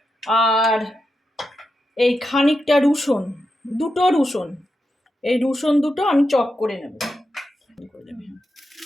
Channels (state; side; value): normal; both; correlation 0.87